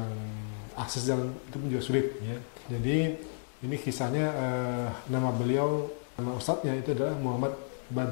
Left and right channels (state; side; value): silent; right; digital silence